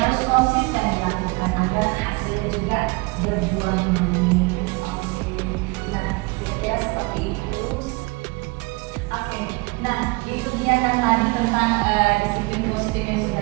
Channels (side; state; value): left; quieter; 27.0 dB